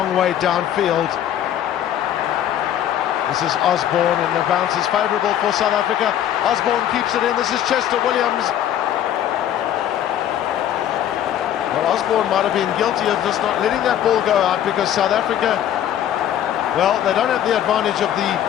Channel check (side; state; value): right; quieter; 10.8 dB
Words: way downfield. This is Osborne, and the bounce is favourable for South Africa. Osborne keeps it in. This is Chester Williams. Well, Osborne might have been guilty of just not letting that ball go out, because South Africa, well, they don't have the advantage of the